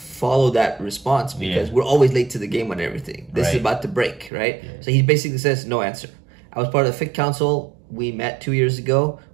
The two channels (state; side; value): drops out; left; at 4.3 s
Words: that response because we're always late to the game on everything. This is about to break, right? Yeah. So he basically says, no answer. I was part of the Fiqh Council. We met 2 years ago.